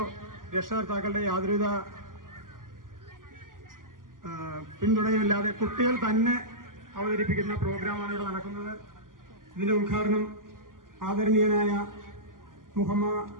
രക്ഷകർത്താക്കളുടെയോ യാതൊരുവിധ പിന്തുണയുമില്ലാതെ കുട്ടികൾ തന്നെ അവതരിപ്പിക്കുന്ന പ്രോഗ്രാമാണ് ഇവിടെ നടക്കുന്നത്. ഇതിന്റെ ഉദ്ഘാടനം ആദരണീയനായ Muhamma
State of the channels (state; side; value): late; left; 0.90 ms